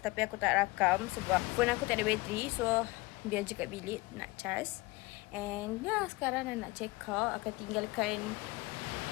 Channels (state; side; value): quieter; right; 22.8 dB